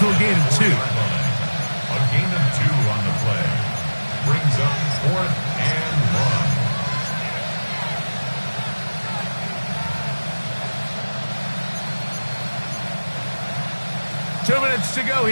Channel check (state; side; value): inverted; both; correlation -1.00